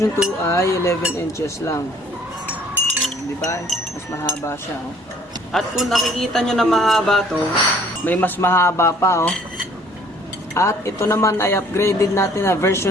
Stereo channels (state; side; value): normal; both; correlation 0.58